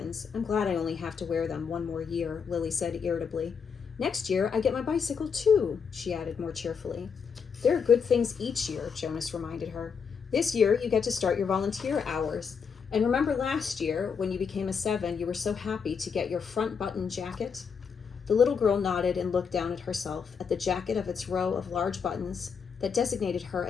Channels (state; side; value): quieter; right; 6.3 dB